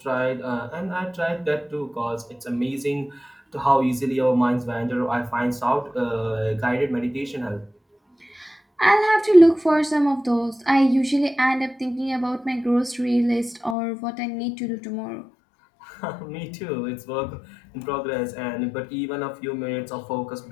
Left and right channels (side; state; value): right; drops out; at 13.8 s